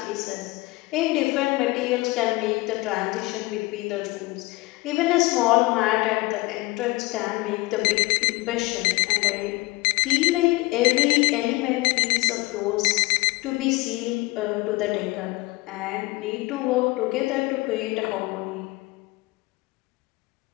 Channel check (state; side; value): quieter; right; 22.1 dB